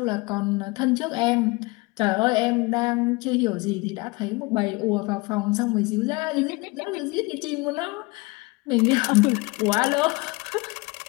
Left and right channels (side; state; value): right; quieter; 24.9 dB